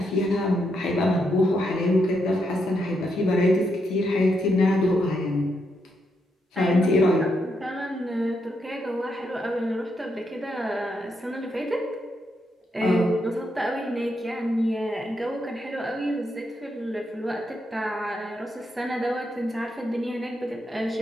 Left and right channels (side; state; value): both; normal; correlation 0.80